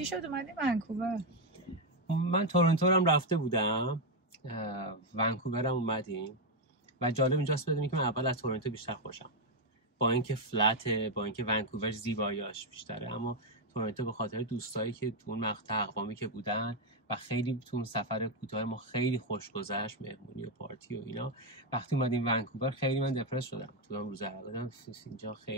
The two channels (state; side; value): normal; both; correlation 0.04